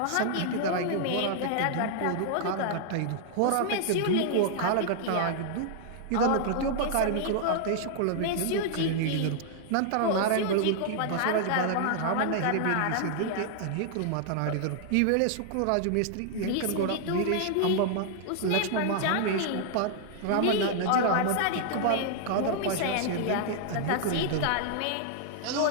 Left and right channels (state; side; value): different; both; correlation -0.01